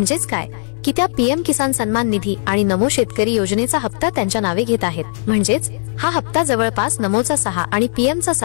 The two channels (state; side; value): silent; right; digital silence